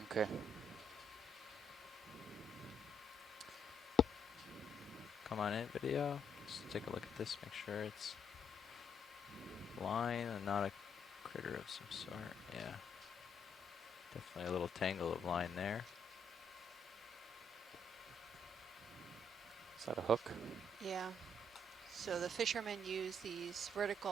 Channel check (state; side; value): normal; both; correlation 0.73